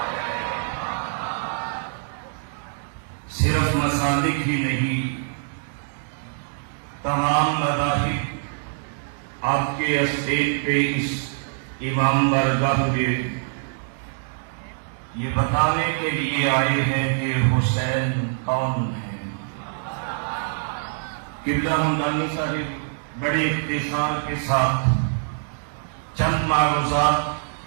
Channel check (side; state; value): left; silent; digital silence